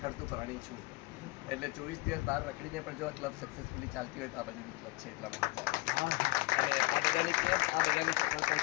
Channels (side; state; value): right; quieter; 23.1 dB